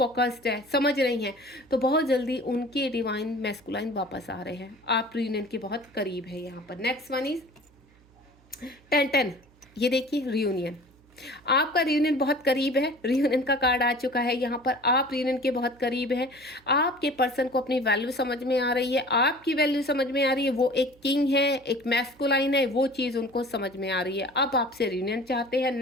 है, समझ रही हैं, तो बहुत जल्दी उनके डिवाइन मैस्कुलाइन वापस आ रहे हैं। आप रियूनियन के बहुत करीब है यहाँ पर। नेक्स्ट वन इज 10, ये देखिए रियूनियन। आपका रियूनियन बहुत करीब है, रियूनियन का कार्ड आ चुका है यहाँ पर। आप रियूनियन के बहुत करीब है। आपके पर्सन को अपनी वैल्यू समझ में आ रही है, आपकी वैल्यू समझ में आ रही है। वो एक किंग है, एक मैस्कुलाइन है, वो चीज़ उनको समझ में आ रही है। अब आपसे रियूनियन चाहते हैं।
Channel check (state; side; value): noise; right; hum, 29 dB below the sound